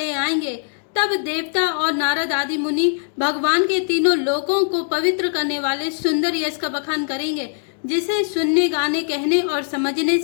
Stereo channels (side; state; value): right; silent; digital silence